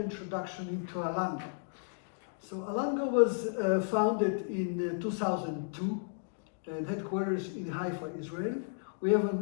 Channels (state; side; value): silent; right; digital silence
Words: into Alango. So Alango was founded in 2002 and headquarters in Haifa, Israel. We have